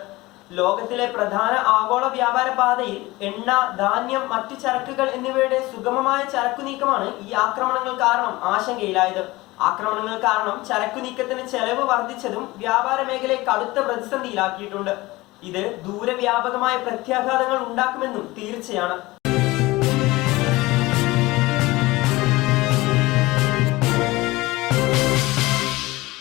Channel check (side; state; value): right; quieter; 20.4 dB